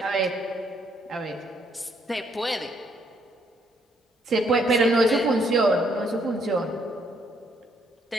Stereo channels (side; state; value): both; normal; correlation 0.70